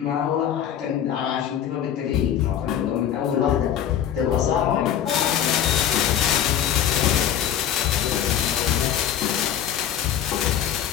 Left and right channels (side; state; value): right; quieter; 9.9 dB